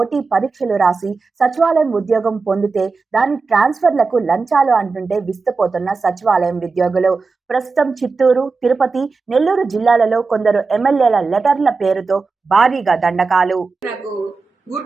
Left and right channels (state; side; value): quieter; left; 4.3 dB